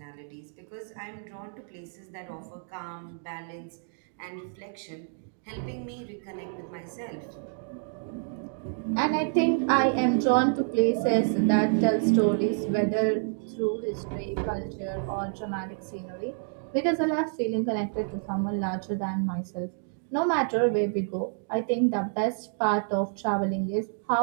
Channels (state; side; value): silent; left; 59 dB below the other